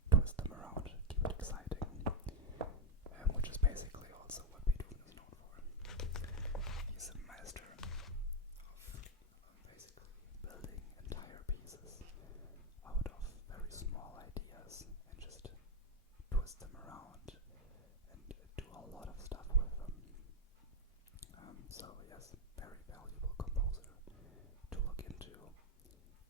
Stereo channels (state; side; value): normal; both; correlation 0.03